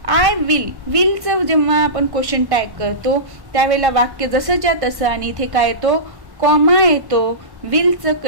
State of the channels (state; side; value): late; left; 1.1 ms